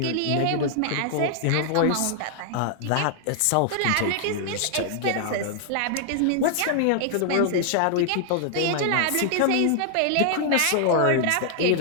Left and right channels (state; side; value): different; both; correlation 0.00